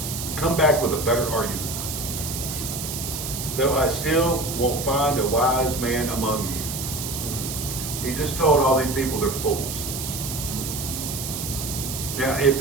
come back with a better argument. Though I still won't find a wise man among you. He just told all these people they're fools. Now, if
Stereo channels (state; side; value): noise; right; hiss, 5 dB below the sound